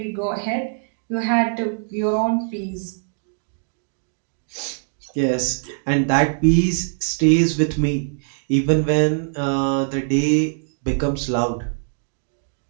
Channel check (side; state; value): left; silent; digital silence